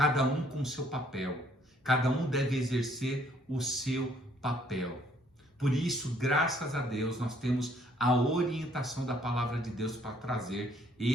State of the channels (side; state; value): both; normal; correlation 0.64